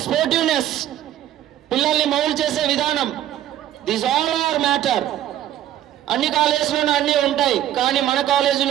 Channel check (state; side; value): quieter; left; 12.2 dB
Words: స్పోర్టివ్నెస్, పిల్లల్ని మౌల్డ్ చేసే విధానం, దిస్ ఆల్ ఆర్ మ్యాటర్. అన్ని కాలేజీలోనూ అన్నీ ఉంటాయి, కానీ మన